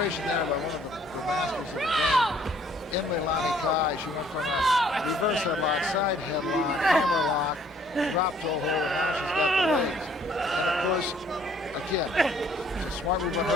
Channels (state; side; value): normal; both; correlation 0.61